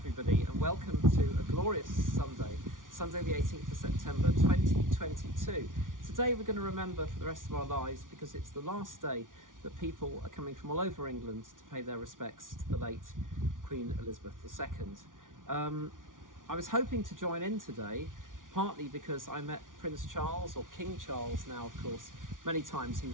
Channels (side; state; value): left; late; 0.88 ms